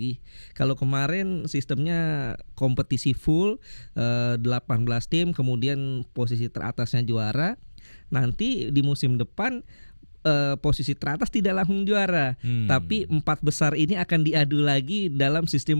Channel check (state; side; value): inverted; both; correlation -1.00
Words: Kalau kemarin sistemnya kompetisi full 18 tim, kemudian posisi teratasnya juara. Nanti di musim depan posisi teratas tidak langsung juara, tapi 4 besar ini akan diadu lagi dalam